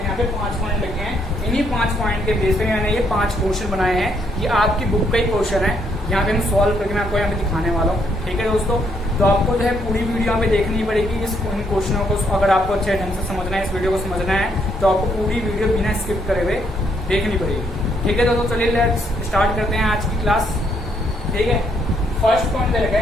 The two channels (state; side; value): normal; both; correlation 0.72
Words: यहाँ पे 5 पॉइंट लिखे हैं, इन्हीं 5 पॉइंट के बेस पे मैंने ये 5 क्वेश्चन बनाए हैं। ये आपकी बुक का ही क्वेश्चन है, यहाँ पे हम सॉल्व करके मैं आपको यहाँ पे दिखाने वाला हूँ। ठीक है दोस्तों, तो आपको जो है पूरी वीडियो यहाँ पे देखनी पड़ेगी। इन क्वेश्चनों को अगर आपको अच्छे ढंग से समझना है, इस वीडियो को समझना है, तो आपको पूरी वीडियो बिना स्किप करे हुए देखनी पड़ेगी। ठीक है दोस्तों, चलिए लेट्स स्टार्ट करते हैं आज की क्लास। ठीक है, फर्स्ट पॉइंट दे रखा